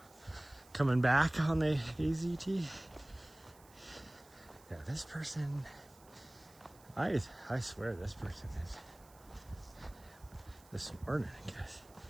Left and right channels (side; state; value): right; noise; hiss, 25 dB below the sound